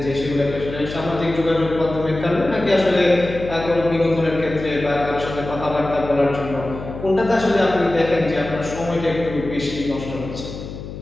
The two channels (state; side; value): noise; left; hum, 10 dB below the sound